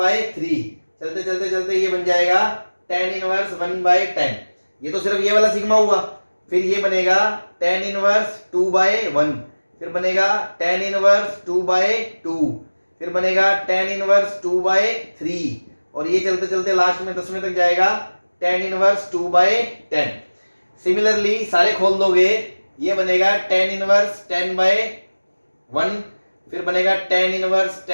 चलते चलते चलते ये बन जाएगा tan इनवर्स 1/10। ये तो सिर्फ ये वाला सिग्मा हुआ। फिर ये बनेगा tan इनवर्स 2/1, फिर बनेगा tan इनवर्स 2/2, फिर बनेगा tan इनवर्स 2/3, और ये चलते चलते लास्ट में 10वें तक जाएगा tan इनवर्स 2/10। सिमिलरली सारे खोल दोगे, ये बनेगा tan इनवर्स 10/1, फिर बनेगा tan इनवर्स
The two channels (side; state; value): both; inverted; correlation -1.00